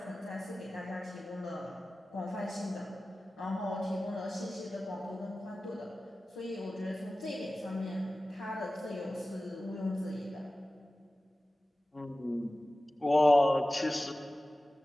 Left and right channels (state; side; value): normal; both; correlation 0.96